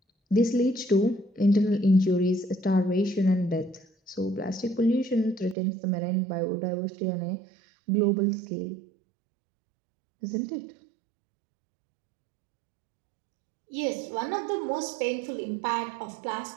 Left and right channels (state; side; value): drops out; left; at 5.6 s